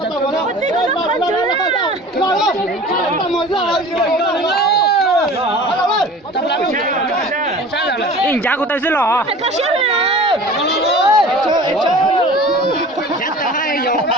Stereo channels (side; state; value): both; normal; correlation 0.41